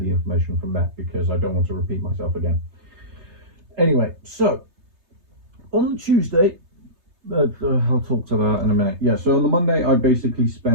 information from that, because I don't want to repeat myself again. Anyway, so on the Tuesday, I'll talk to that in a minute. Yeah, so on the Monday, I basically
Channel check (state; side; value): late; left; 3.3 ms